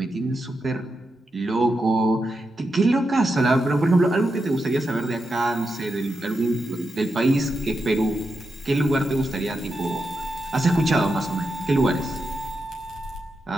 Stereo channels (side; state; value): both; normal; correlation 0.87